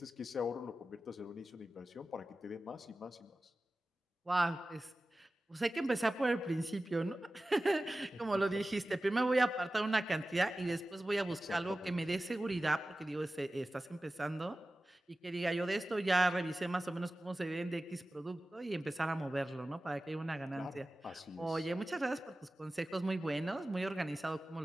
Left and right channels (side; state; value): both; normal; correlation 0.95